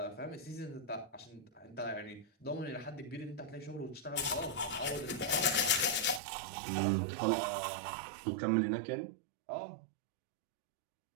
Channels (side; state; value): left; drops out; at 6.2 s